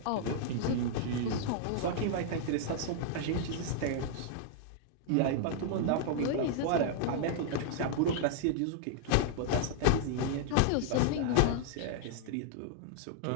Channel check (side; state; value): both; different; correlation -0.01